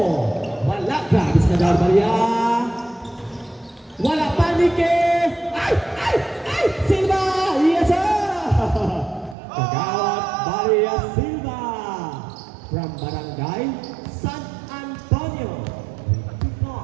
Wala, grabe si Kagawad Maria. Wala panike! Ay! Ay! Ay! Silva! Yes, sir! Kagawad Maria Silva from Barangay San Antonio.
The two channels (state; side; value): drops out; left; at 9.3 s